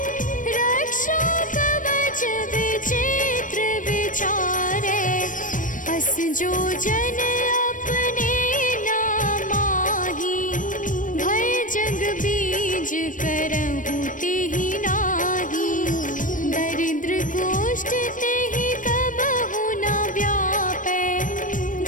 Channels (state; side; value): late; right; 0.38 ms